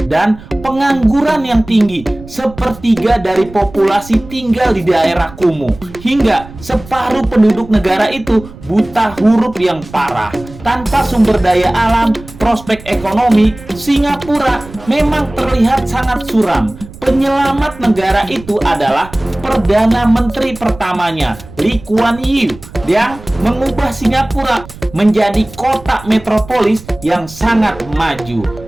dan pengangguran yang tinggi. Sepertiga dari populasi tinggal di daerah kumuh, hingga separuh penduduk negara itu buta huruf yang parah. Tanpa sumber daya alam, prospek ekonomi, Singapura memang terlihat sangat suram. Penyelamat negara itu adalah Perdana Menteri pertamanya, Lee Kuan Yew, yang mengubah Singapura menjadi kota metropolis yang sangat maju.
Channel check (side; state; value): right; noise; rumble, 18 dB below the sound